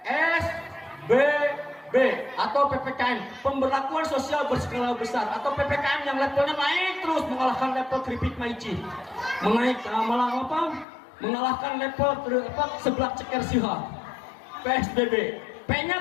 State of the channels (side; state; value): right; drops out; at 10.9 s